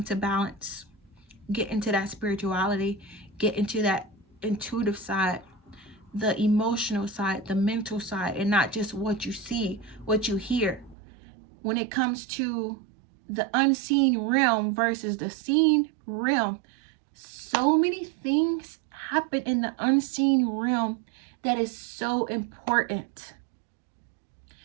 to balance. Get into that spirituality. Get into that intuitive side, the emotional side, the mental side, and not just what you see, what you hear. When it comes to the unseen realm versus the seen realm, so many things happen in the unseen realm that is so important.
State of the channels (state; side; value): drops out; left; at 11.0 s